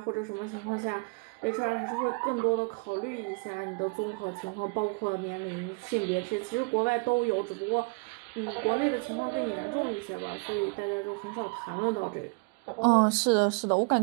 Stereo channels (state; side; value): quieter; left; 32.4 dB